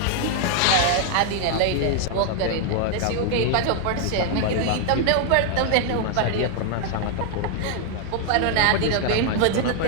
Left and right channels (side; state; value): both; different; correlation 0.00